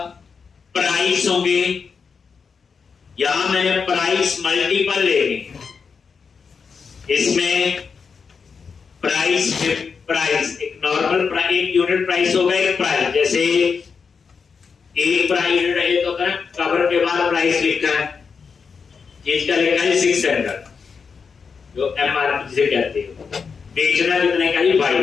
प्राइस होंगे। यहां मैंने प्राइस मल्टीपल लेने, इसमें प्राइस एक नॉर्मल प्राइस, एक यूनिट प्राइस होगा, एक प्राइस, जैसे एक प्राइस यूनिट है तो कवर के बाद प्राइस लिखा है, चीज का लिखा है 600, जो एमआरपी जिसे कहते हैं, बेचना कितने का ही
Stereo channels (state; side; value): quieter; right; 5.6 dB